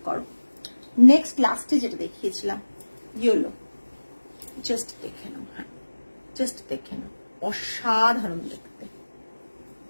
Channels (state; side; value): inverted; both; correlation -1.00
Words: করো। নেক্সট লাস্টে যেটা দেখিয়েছিলাম ইয়েলো, জাস্ট দেখে নাও, হ্যাঁ জাস্ট দেখে নাও, অসাধারণ দেখতে।